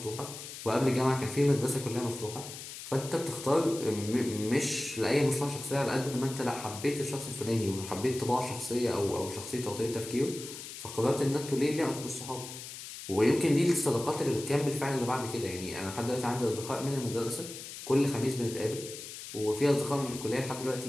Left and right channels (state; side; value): noise; left; hiss, 11 dB below the sound